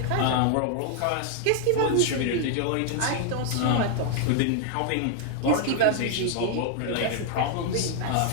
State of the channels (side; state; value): both; different; correlation 0.00